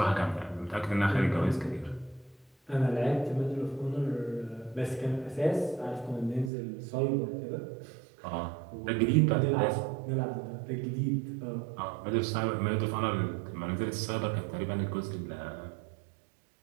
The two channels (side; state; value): left; drops out; at 6.5 s